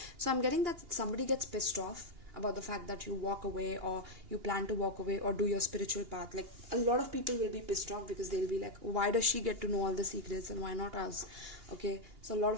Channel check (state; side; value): late; left; 2.8 ms